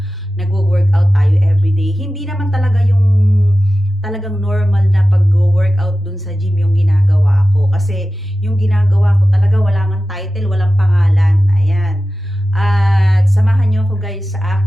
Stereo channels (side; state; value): both; normal; correlation 0.95